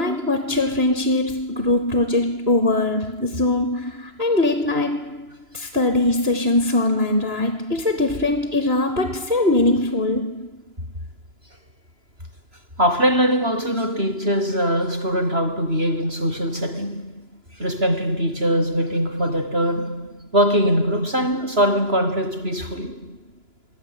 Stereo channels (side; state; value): left; late; 2.9 ms